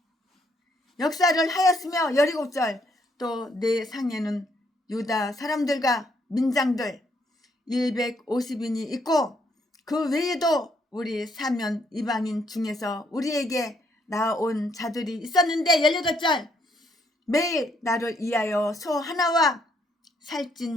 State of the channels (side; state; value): both; normal; correlation 0.71